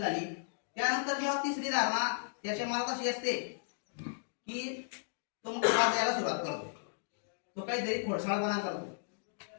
झाली. त्यानंतर जेव्हा तिसरी धारणा त्याच्या मला कशी असते की तो मग त्रास द्यायला सुरुवात करतो, तो काहीतरी खोडसाळपणा करतो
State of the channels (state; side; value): silent; right; digital silence